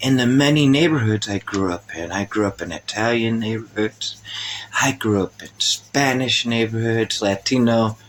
the many neighborhoods I grew up in. I grew up in Italian neighborhoods. I grew up in Spanish neighborhoods, Latino,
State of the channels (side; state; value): both; identical; correlation 1.00